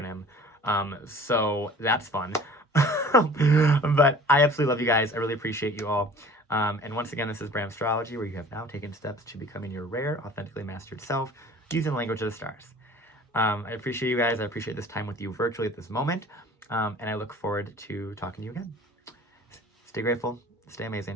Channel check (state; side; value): normal; both; correlation 0.46